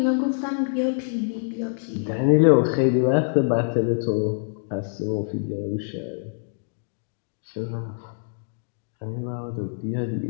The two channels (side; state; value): right; silent; digital silence